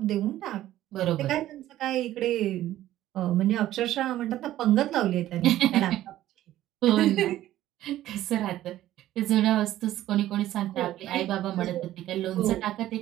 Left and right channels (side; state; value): left; quieter; 13.8 dB